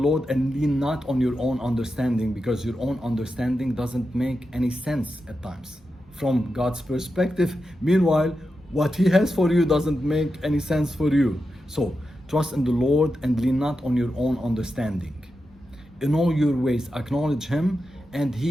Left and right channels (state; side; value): normal; both; correlation 0.89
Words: and lean not on your own understanding, because your own understanding doesn't make any sense at times from God's perspective. Meanwhile, what He has for you doesn't make any sense for you. So, trust in the Lord and lean not on your own understanding. In all your ways, acknowledge Him, and